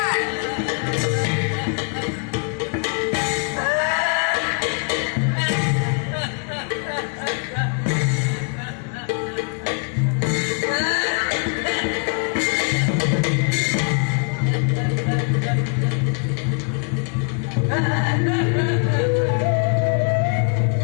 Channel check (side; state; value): right; quieter; 39.4 dB